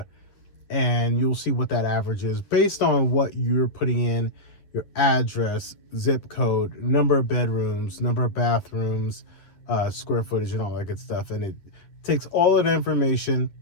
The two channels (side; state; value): right; late; 10 ms